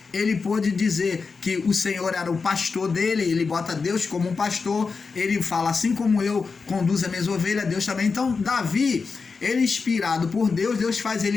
ele pôde dizer que o Senhor era o pastor dele. Ele bota Deus como um pastor. Ele fala: assim como eu conduzo as minhas ovelhas, Deus também. Então Davi, ele inspirado por Deus, Deus faz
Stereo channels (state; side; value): quieter; right; 4.8 dB